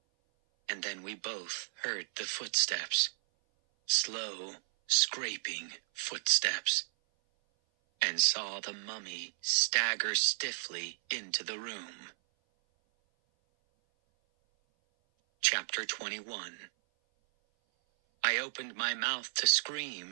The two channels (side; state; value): left; silent; 55 dB below the other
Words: And then we both heard the footsteps. Slow, scraping footsteps. And saw the mummy stagger stiffly into the room. Chapter 21. I opened my mouth to